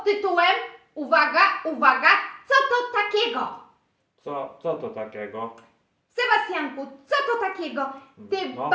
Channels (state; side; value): identical; both; correlation 1.00